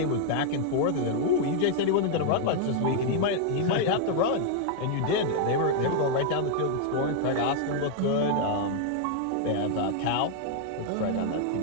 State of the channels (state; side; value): different; both; correlation 0.00